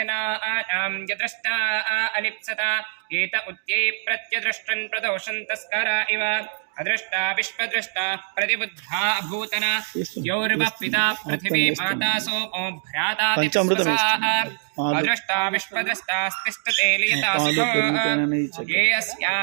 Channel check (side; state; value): left; silent; digital silence